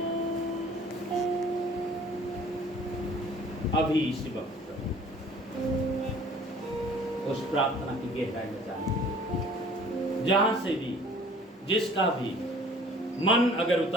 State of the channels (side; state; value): both; normal; correlation 0.51